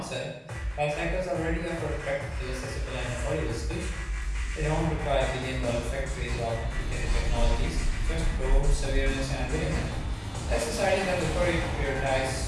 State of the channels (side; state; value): both; identical; correlation 1.00